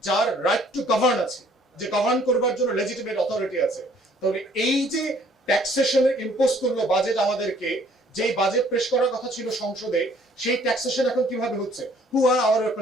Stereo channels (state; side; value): normal; both; correlation 0.59